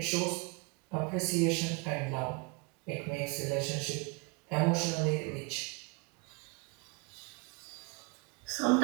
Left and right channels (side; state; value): left; quieter; 30.4 dB